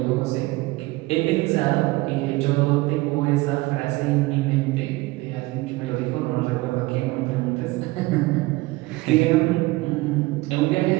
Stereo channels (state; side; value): quieter; left; 21.0 dB